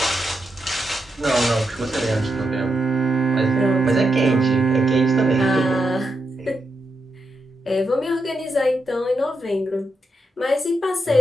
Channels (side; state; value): both; normal; correlation 0.84